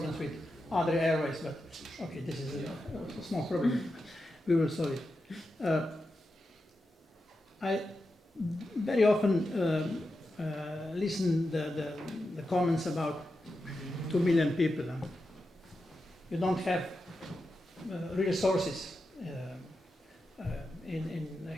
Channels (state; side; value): normal; both; correlation 0.89